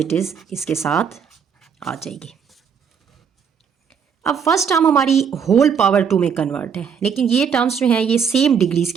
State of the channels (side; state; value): left; quieter; 7.0 dB